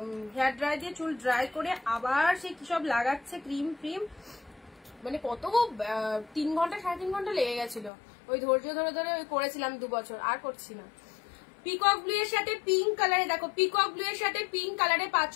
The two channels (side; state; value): right; drops out; at 7.9 s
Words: হেয়ার ড্রাই দিয়ে চুল ড্রাই করে আবার সে কি সব লাগাচ্ছে ক্রিম ফ্রিম, মানে কত 3 ঘন্টা 3.5 ঘন্টা লেগে গেছিল। ওই ধৈর্য ধরে ধরে ওই করেছিলাম 2 বছর, আর করছি না। পিকক ব্লু এর সাথে পিঙ্ক কালারে দেখো, পিকক ব্লু এর সাথে পিঙ্ক কালারে